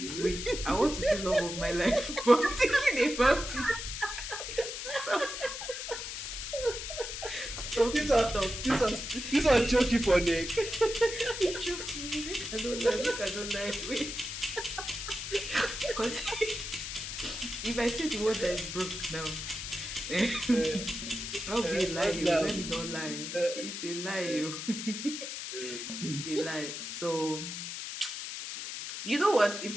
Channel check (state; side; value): noise; left; hiss, 6 dB below the sound